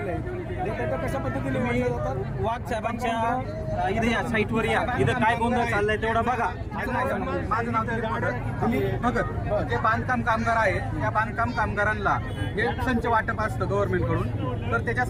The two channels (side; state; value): both; identical; correlation 1.00